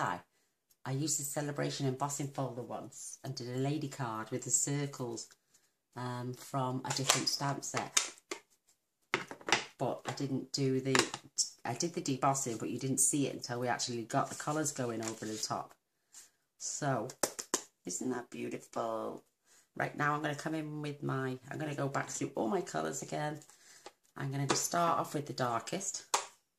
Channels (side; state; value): both; identical; correlation 1.00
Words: I used the Celebration embossing folder once and did a lady card with the circles from a different stamp set. But I didn't do the... I did the debossing, but you didn't see it until we actually got the colours going over the top. So, isn't that beautiful? Right, now I'm going to come in with my... I'm going to go back through all my colours again. I'm going to start off with the darkest.